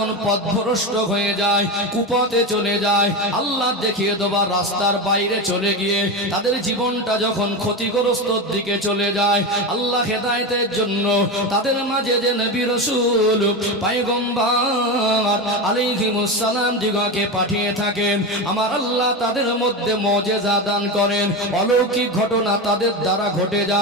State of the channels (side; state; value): both; normal; correlation 0.19